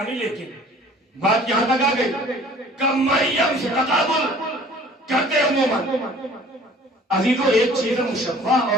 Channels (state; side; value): normal; both; correlation 0.50